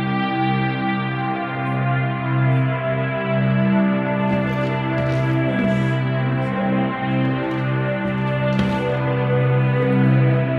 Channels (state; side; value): identical; both; correlation 1.00